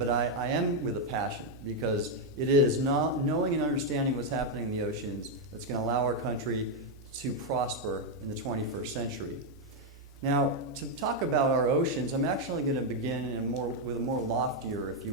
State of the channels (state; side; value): normal; both; correlation 0.02